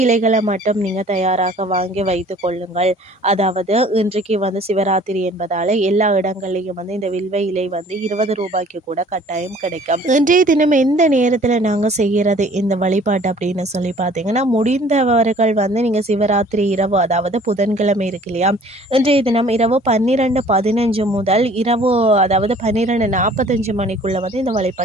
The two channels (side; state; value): both; normal; correlation 0.52